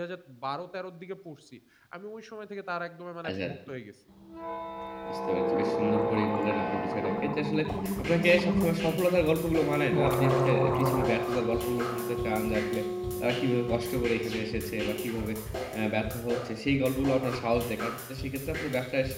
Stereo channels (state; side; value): identical; both; correlation 1.00